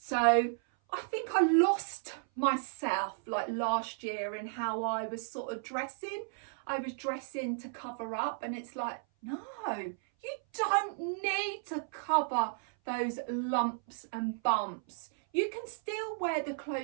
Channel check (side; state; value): left; silent; 55 dB below the other